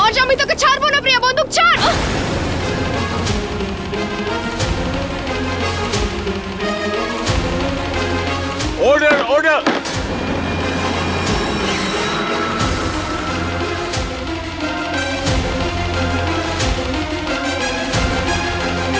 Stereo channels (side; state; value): both; identical; correlation 1.00